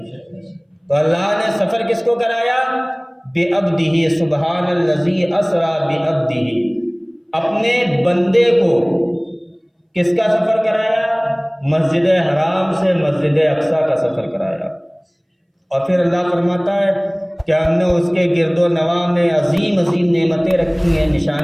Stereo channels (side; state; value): both; identical; correlation 1.00